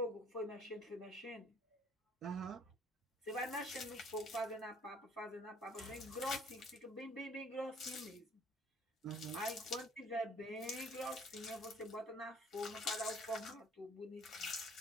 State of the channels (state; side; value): normal; both; correlation 0.57